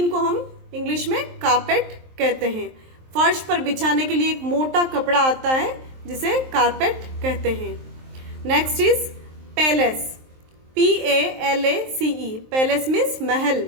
को हम इंग्लिश में कारपेट कहते हैं। फर्श पर बिछाने के लिए एक मोटा कपड़ा आता है जिसे कारपेट कहते हैं। Next is palace, PALACE। Palace means महल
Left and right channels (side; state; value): left; late; 23 ms